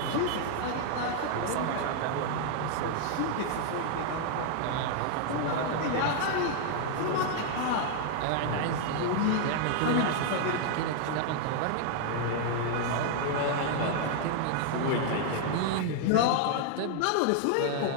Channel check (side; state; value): both; different; correlation 0.00